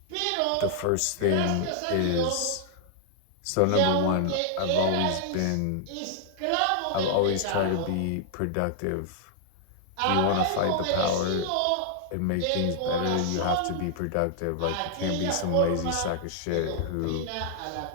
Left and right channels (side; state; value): both; different; correlation 0.00